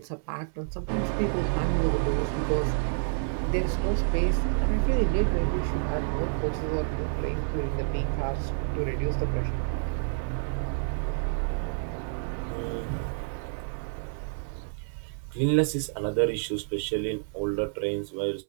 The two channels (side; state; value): left; silent; 59 dB below the other